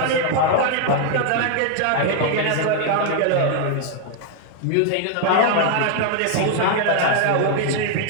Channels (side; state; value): both; different; correlation 0.00